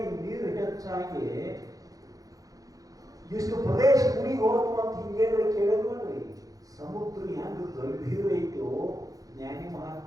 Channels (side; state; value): left; late; 0.17 ms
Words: ನೀರು ಹೆಚ್ಚಾಗಿ ಇಷ್ಟು ಪ್ರದೇಶ ಮುನಿಗೆ ಹೋತು ಅಂತ ಹಿಂಗೇನು ಕೇಳಿದ್ ನೋಡ್ರಿ. ಸಮುದ್ರ ಹೆಂಗ ಗಂಭೀರ ಐತೋ ಜ್ಞಾನಿ